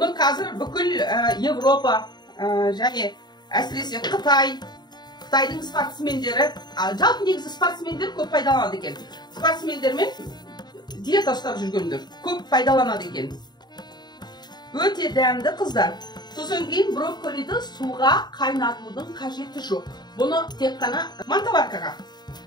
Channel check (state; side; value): late; right; 0.21 ms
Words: қазір бүкіл Европа және әсіресе Қытайдың спортсмендері, жалпы негізі спортсмендер көп пайдаланады екен. Спортсмендермен диета ұстап жүргендер көп пайдаланады екен. Өте дәмді қыздар. Сосын кейін брокколиді суға қайнатудың қажеті жоқ. Бұны тек қана мантаваркаға